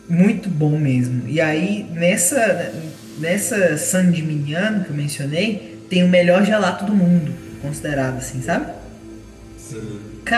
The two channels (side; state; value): both; identical; correlation 1.00